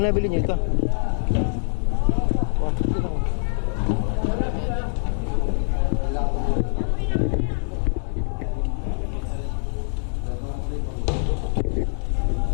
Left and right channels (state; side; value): silent; right; digital silence